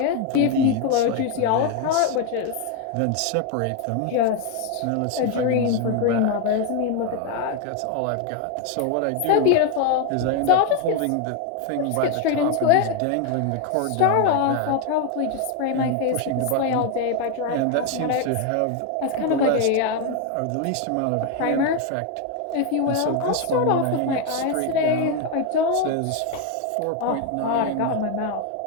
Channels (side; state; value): both; different; correlation 0.01